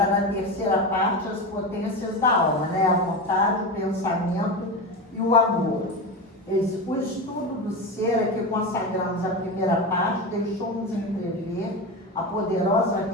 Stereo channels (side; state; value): both; normal; correlation 0.21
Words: na terceira parte, as potências da alma, né? A vontade, o pensamento e o amor. O estudo do ser, a que consagramos a primeira parte, deixou-nos entrever a poderosa